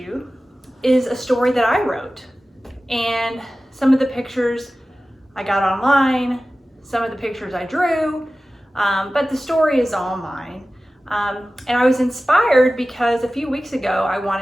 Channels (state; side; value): normal; both; correlation 0.96